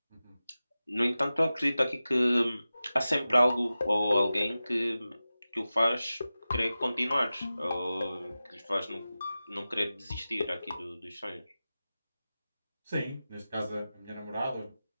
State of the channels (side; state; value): both; inverted; correlation -0.95